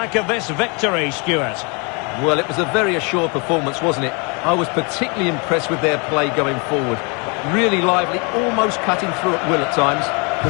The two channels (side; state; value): right; quieter; 32.6 dB